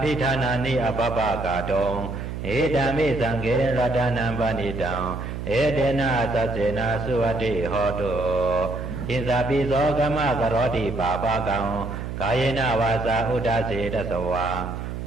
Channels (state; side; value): noise; right; hum, 6 dB below the sound